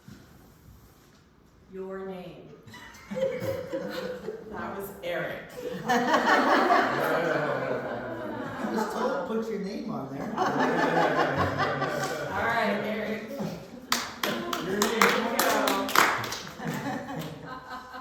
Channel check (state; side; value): identical; both; correlation 1.00